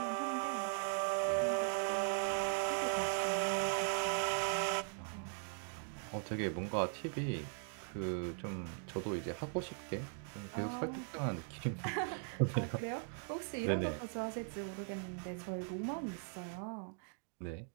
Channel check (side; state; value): left; silent; 51 dB below the other